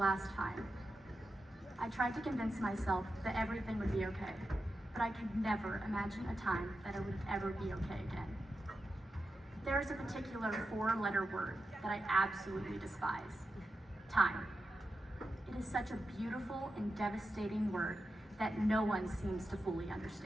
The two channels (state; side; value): normal; both; correlation 0.89